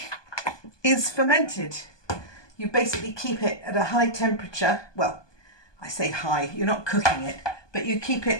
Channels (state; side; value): late; right; 1.2 ms